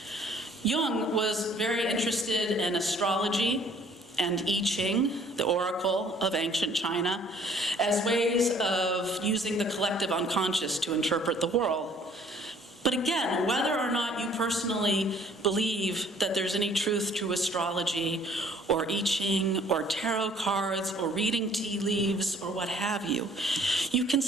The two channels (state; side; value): normal; both; correlation 0.58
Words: Jung was very interested in astrology and I Ching, the oracle of ancient China, as ways of using the collective unconscious to interpret the world. But again, whether or not you personally believe that there's any truth to astrology or I Ching or tarot cards or reading tea leaves or what have you, you can